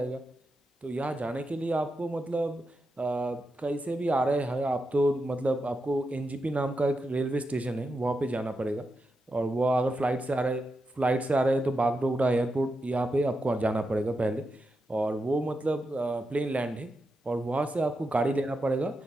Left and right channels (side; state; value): both; normal; correlation 0.87